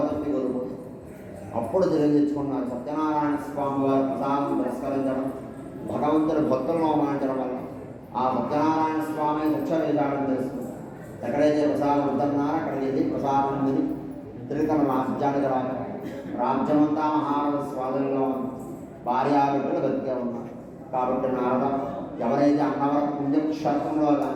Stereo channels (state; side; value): identical; both; correlation 1.00